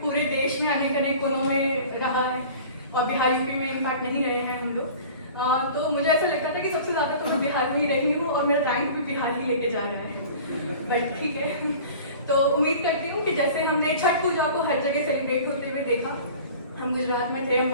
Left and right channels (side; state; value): both; inverted; correlation -0.42